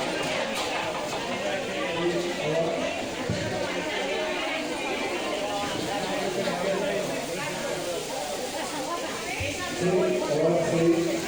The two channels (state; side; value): noise; right; rumble, 20 dB below the sound